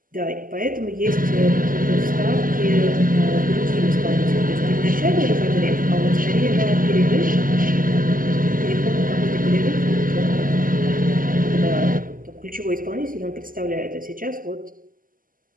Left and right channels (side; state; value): left; late; 0.41 ms